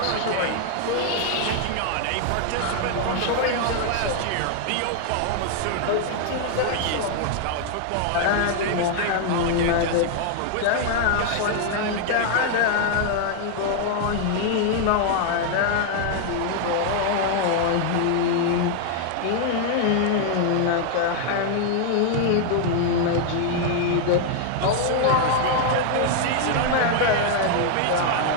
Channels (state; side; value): different; both; correlation 0.00